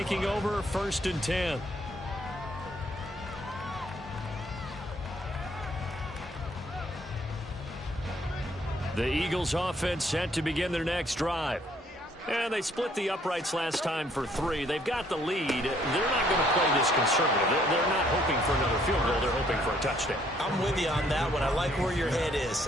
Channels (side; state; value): both; normal; correlation 0.65